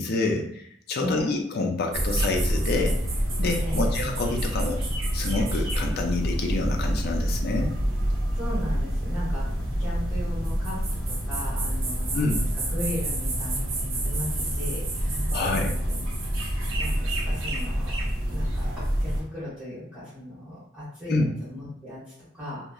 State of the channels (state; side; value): normal; both; correlation 0.76